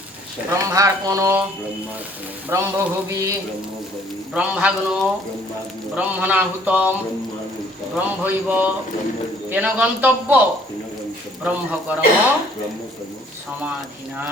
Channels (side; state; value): both; normal; correlation 0.59